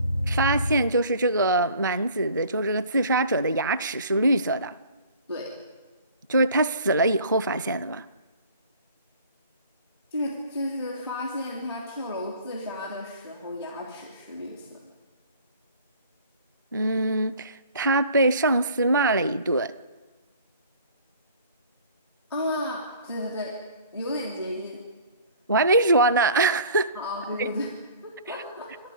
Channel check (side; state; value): both; inverted; correlation -0.49